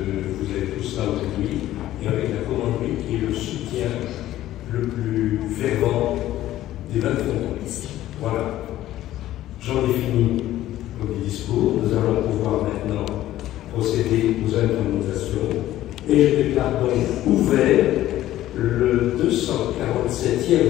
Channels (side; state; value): right; quieter; 14.0 dB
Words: des 20 frontons. Voilà. J'en ai fini le discours. Nous allons pouvoir maintenant procéder aux intronisations. Et je déclare donc ouvert le